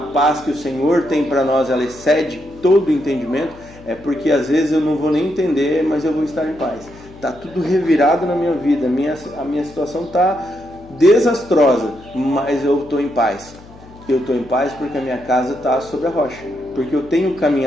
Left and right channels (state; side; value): noise; left; hum, 21 dB below the sound